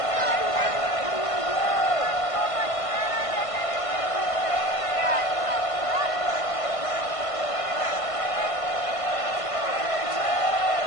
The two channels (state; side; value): late; right; 1.5 ms